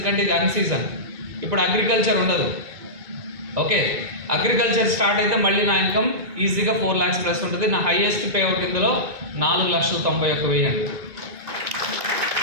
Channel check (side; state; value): left; late; 2.2 ms